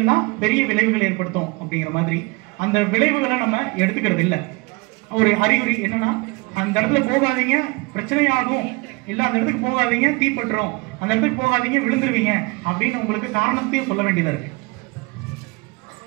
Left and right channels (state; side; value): quieter; left; 27.3 dB